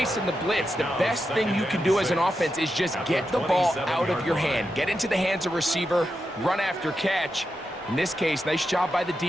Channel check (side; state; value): both; normal; correlation 0.87